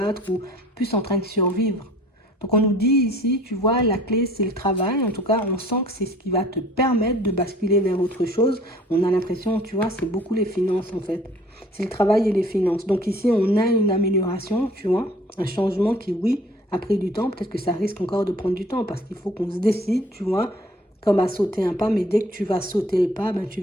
ou plus en train de survivre. Donc on nous dit ici, tu vois, la clé c'est le travail. En tout cas, on sent que c'est ce qui va te permettre de basculer vers autre chose. On a l'impression, tu vois, c'est beaucoup les finances en fait. C'est le travail et les finances. Donc ici, on a une amélioration, tu vois, un changement qui, oui, a pris du temps. Peut-être que ça risque encore de prendre du temps parce qu'il faut qu'on se décide, tu vois, comme à sauter un pas. Mais dès que tu vas sauter le pas, ben, tu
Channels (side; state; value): both; normal; correlation 0.52